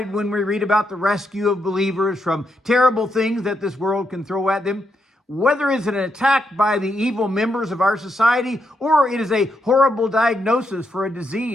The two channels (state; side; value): normal; both; correlation 0.81